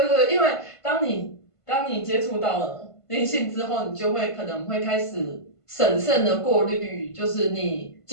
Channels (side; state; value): right; late; 1.5 ms